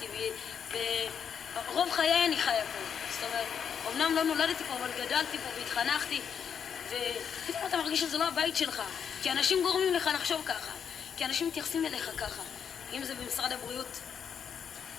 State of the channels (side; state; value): right; quieter; 7.5 dB